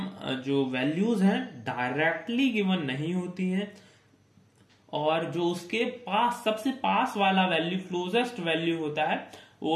जो वैल्यूज हैं डायरेक्टली गिवन नहीं होती हैं, और जो उसके पास सबसे पास वाला वैल्यू, क्लोजेस्ट वैल्यू होता है,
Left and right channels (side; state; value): both; identical; correlation 1.00